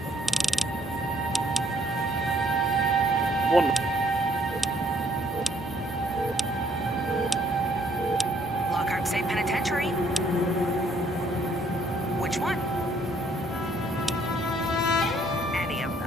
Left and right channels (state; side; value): normal; both; correlation 0.65